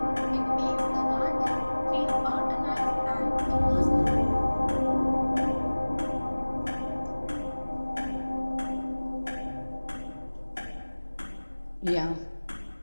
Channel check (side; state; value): both; inverted; correlation -1.00